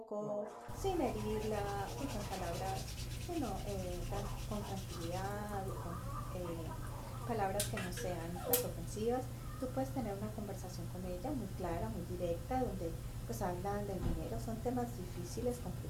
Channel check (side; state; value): both; identical; correlation 1.00